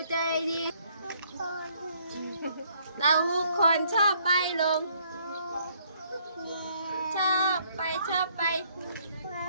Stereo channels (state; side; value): inverted; both; correlation -0.66